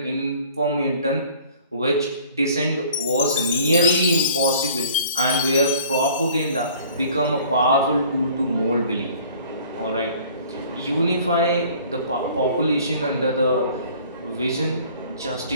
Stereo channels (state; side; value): inverted; both; correlation -0.52